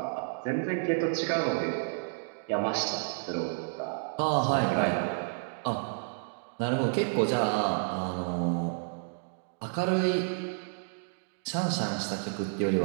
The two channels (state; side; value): silent; left; digital silence